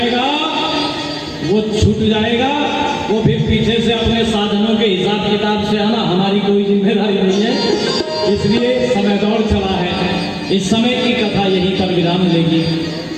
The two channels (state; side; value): identical; both; correlation 1.00